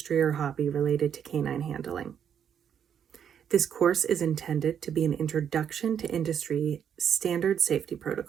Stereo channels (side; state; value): left; quieter; 8.5 dB